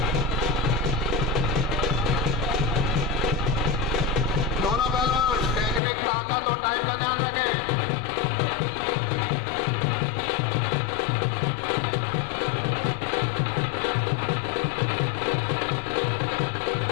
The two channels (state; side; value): drops out; right; at 5.8 s